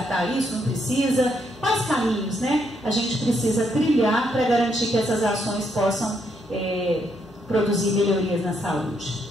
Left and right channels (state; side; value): normal; both; correlation 0.75